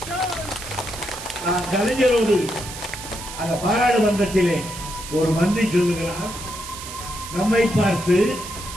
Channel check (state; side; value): noise; right; hiss, 11 dB below the sound